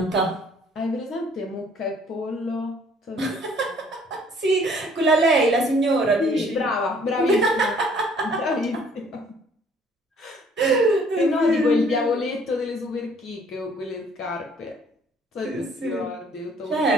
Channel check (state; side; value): normal; both; correlation 0.59